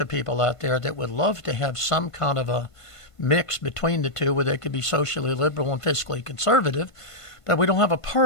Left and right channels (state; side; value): late; right; 1.5 ms